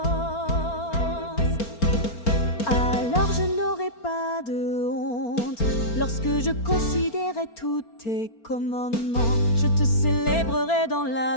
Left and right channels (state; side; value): late; right; 4.3 ms